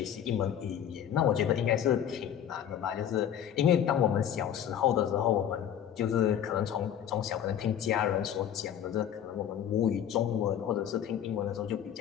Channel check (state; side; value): quieter; right; 9.7 dB